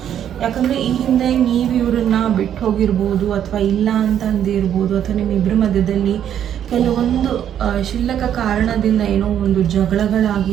ಯಾಕಂದರೆ ಈ ಹಿಂದೆ ನೀವು ಇವ್ರನ್ನ ಬಿಟ್ಟು ಹೋಗಿರ್ಬೋದು, ಅಥವಾ ಇಲ್ಲ ಅಂತ ಅಂದಿರ್ಬೋದು, ಅಥವಾ ನಿಮ್ಮಿಬ್ಬರ ಮಧ್ಯದಲ್ಲಿ ಕೆಲವೊಂದು ಕ್ಷುಲ್ಲಕ ಕಾರಣದಿಂದ ಏನೋ ಒಂದು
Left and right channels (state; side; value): quieter; left; 9.9 dB